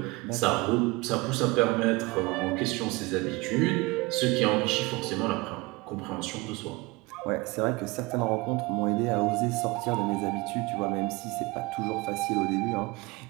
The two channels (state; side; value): quieter; left; 23.5 dB